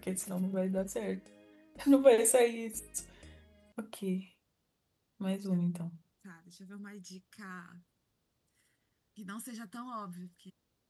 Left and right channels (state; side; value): identical; both; correlation 1.00